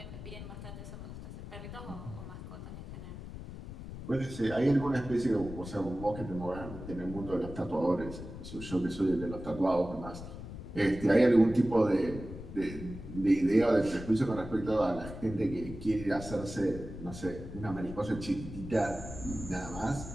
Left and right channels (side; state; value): left; noise; rumble, 11 dB below the sound